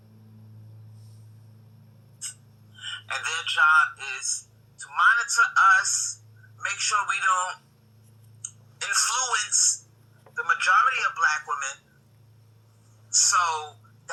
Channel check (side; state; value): both; identical; correlation 1.00